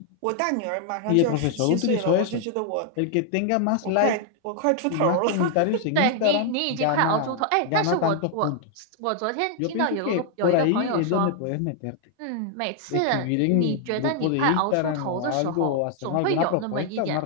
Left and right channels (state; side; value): different; both; correlation 0.00